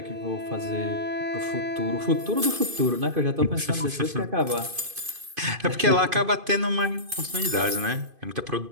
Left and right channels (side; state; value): left; late; 2.5 ms